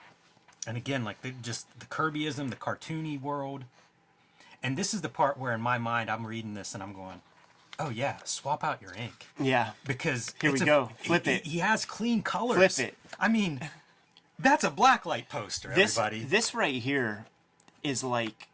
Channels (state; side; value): identical; both; correlation 1.00